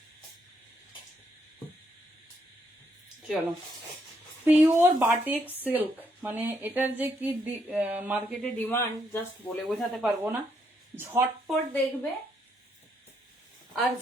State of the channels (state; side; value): normal; both; correlation 0.75